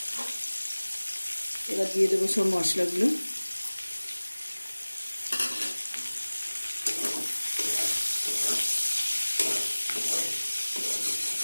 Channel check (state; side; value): inverted; both; correlation -1.00